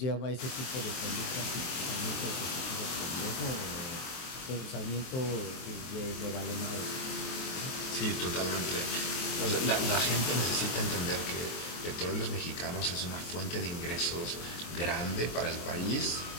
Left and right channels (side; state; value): right; late; 23 ms